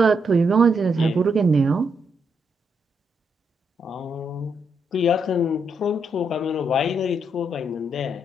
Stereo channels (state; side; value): normal; both; correlation 0.78